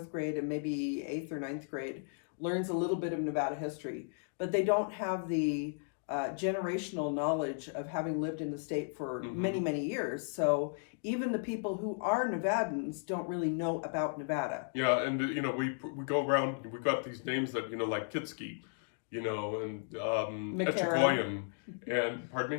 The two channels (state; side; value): silent; right; digital silence